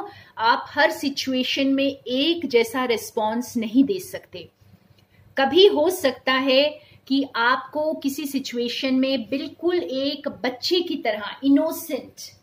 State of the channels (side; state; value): both; identical; correlation 1.00